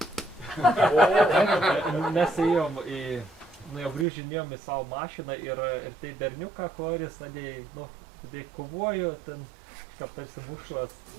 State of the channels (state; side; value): drops out; left; at 4.0 s